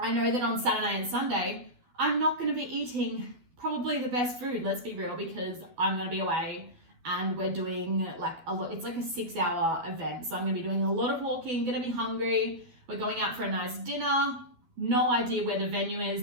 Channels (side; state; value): left; late; 12 ms